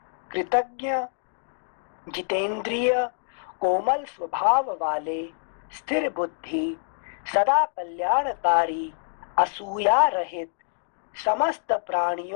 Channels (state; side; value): silent; right; digital silence